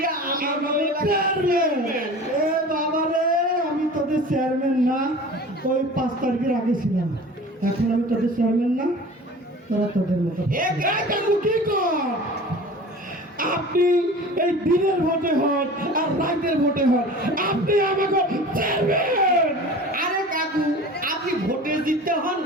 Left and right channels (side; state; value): both; normal; correlation 0.39